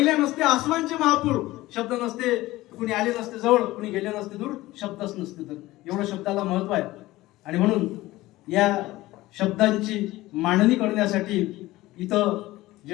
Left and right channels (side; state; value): right; quieter; 17.8 dB